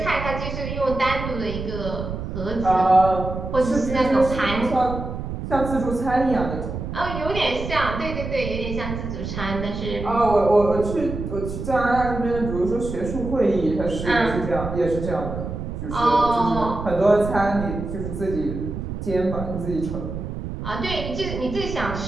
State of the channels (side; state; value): right; noise; rumble, 6 dB below the sound